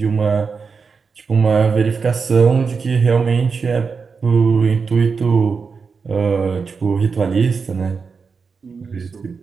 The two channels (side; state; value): left; quieter; 5.2 dB